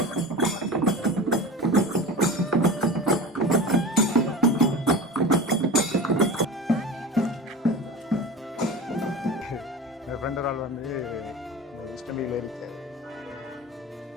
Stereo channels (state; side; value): normal; both; correlation 0.32